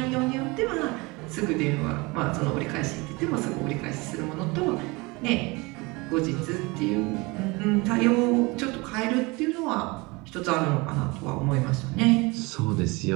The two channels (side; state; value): left; quieter; 25.1 dB